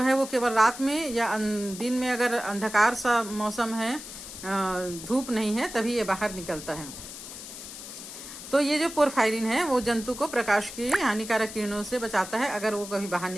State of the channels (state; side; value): noise; left; hiss, 12 dB below the sound